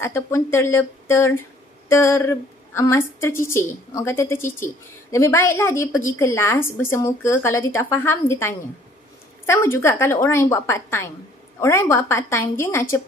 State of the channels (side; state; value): both; normal; correlation 0.58